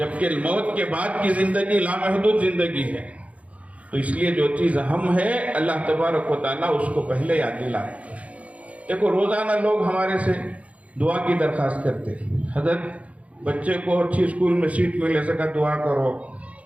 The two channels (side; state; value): left; late; 0.066 ms